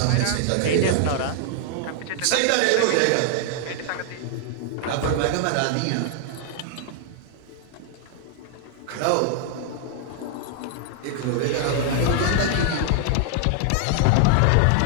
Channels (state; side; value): different; both; correlation 0.00